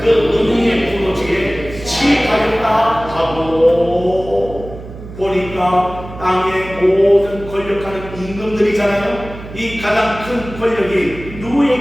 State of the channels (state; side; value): noise; right; hum, 14 dB below the sound